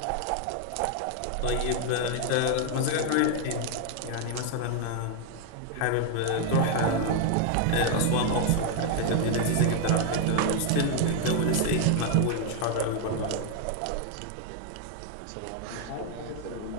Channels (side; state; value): both; different; correlation 0.00